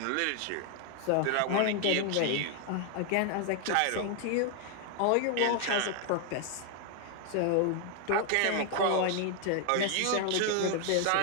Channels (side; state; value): both; different; correlation 0.00